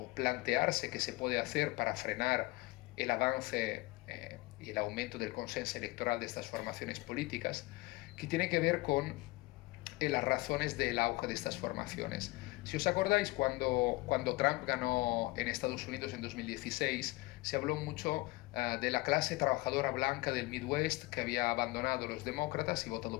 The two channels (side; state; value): right; quieter; 21.9 dB